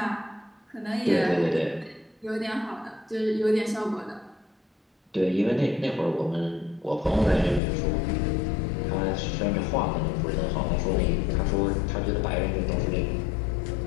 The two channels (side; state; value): right; drops out; at 7.6 s